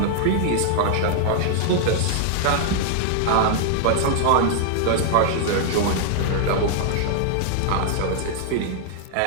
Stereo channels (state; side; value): different; both; correlation -0.01